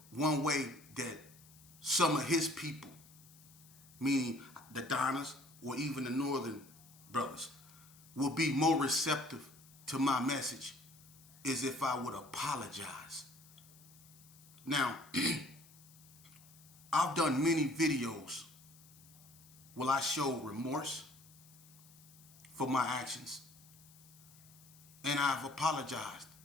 one way that some of his people, meaning the Donnas or even the Northern brothers, will be more receptive to my message is if I would apologize. Now, I've done many videos where I show remorse for my actions, and I've apologized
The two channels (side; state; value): left; noise; hiss, 23 dB below the sound